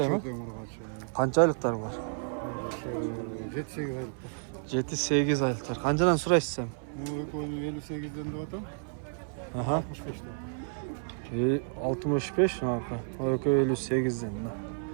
mi? Çok urgaç. Qancha aylıqlar var? 7-8 aylık. 7-8 aylıqlar. Qanchadan suraysiz sen? Bu 58'den de atam. Aha. 65'ten. 65 marka. O 58'den.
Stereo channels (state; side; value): silent; left; 56 dB below the other